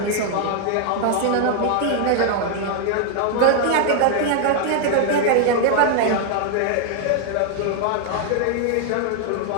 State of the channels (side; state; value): both; different; correlation 0.00